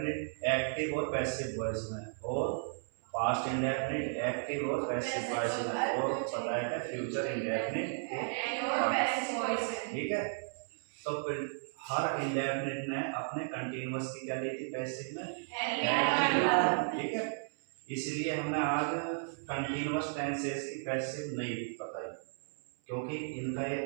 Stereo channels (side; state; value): left; silent; 55 dB below the other